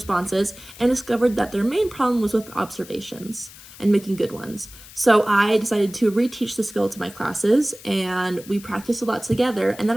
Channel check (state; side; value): noise; left; hiss, 19 dB below the sound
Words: and discovered that their main problem was with observations and making good ones. So I decided to reteach the skill to my classes and we practiced a lot together, and